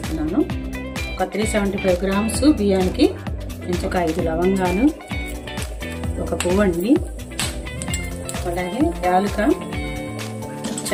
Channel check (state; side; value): identical; both; correlation 1.00